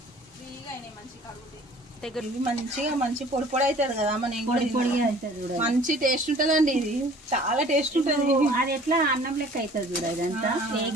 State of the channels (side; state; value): both; normal; correlation 0.50